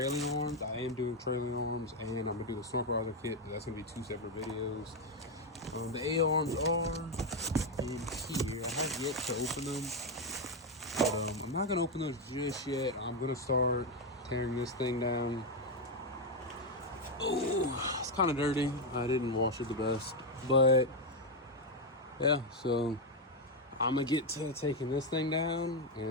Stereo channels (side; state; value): both; normal; correlation 0.05